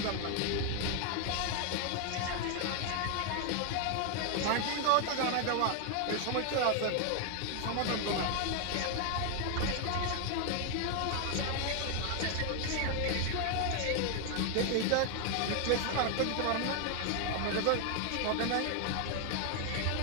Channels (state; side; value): different; both; correlation 0.00